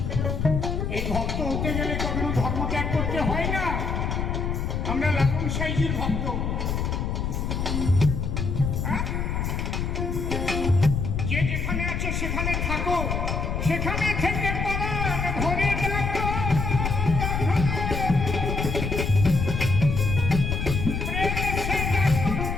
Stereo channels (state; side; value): noise; left; rumble, 1 dB below the sound